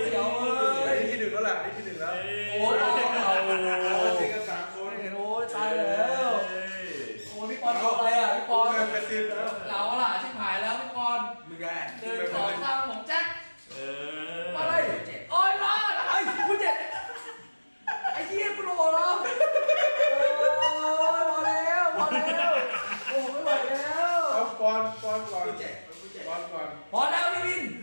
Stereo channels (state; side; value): inverted; both; correlation -1.00